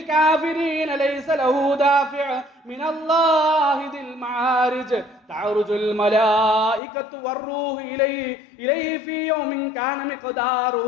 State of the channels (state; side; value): drops out; right; at 6.8 s